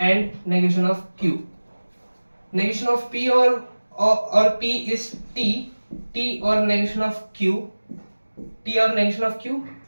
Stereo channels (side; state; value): both; inverted; correlation -1.00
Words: and negation of Q. Negation of P और P इज T और नेगेशन ऑफ Q, T और नेगेशन ऑफ Q